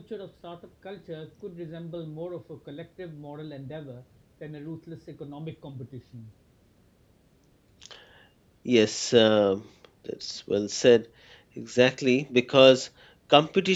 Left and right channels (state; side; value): identical; both; correlation 1.00